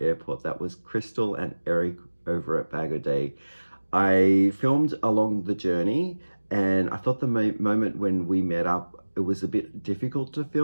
That was Crystal and Eric over at Bag O' Day. I filmed along the journey, and I thought the moment when we met up, it was a bit difficult to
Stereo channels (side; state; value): both; inverted; correlation -1.00